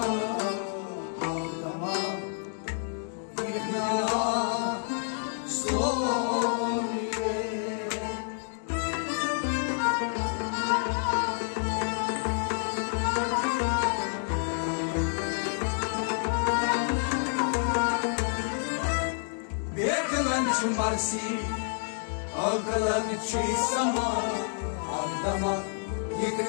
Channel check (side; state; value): right; silent; 59 dB below the other